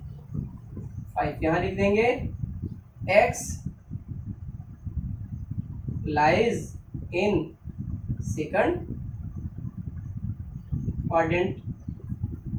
यहां लिख देंगे। x lies in second quadrant.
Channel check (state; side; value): identical; both; correlation 1.00